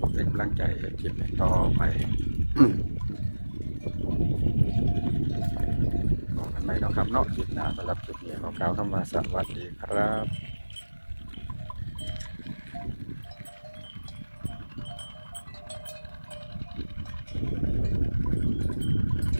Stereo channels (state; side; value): inverted; both; correlation -1.00